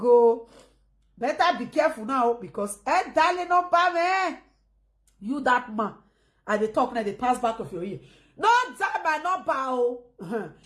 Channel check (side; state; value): both; identical; correlation 1.00